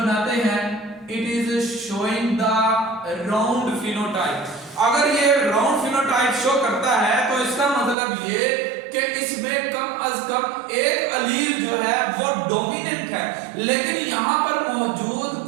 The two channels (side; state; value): left; drops out; at 8.0 s